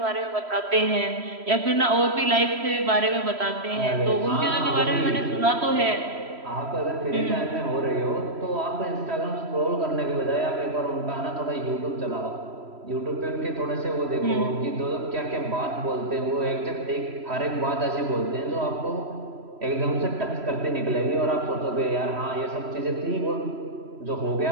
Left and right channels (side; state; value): left; late; 3.1 ms